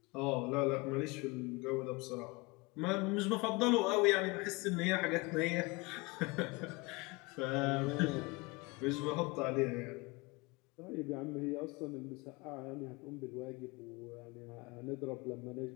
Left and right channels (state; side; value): quieter; right; 25.4 dB